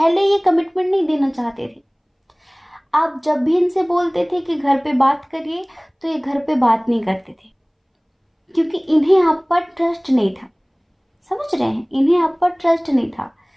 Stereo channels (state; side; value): identical; both; correlation 1.00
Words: ये कमिटमेंट नहीं देना चाहते थे। आप जब भी इनसे बोलते थे कि घर पे बात करिए, तो ये घर पे बात नहीं करते थे। क्योंकि इन्हें आप पर ट्रस्ट नहीं था। समझ रहे हैं, इन्हें आप पर ट्रस्ट नहीं था,